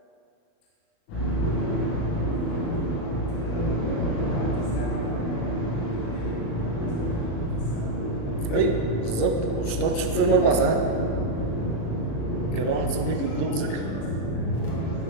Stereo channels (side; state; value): right; late; 36 ms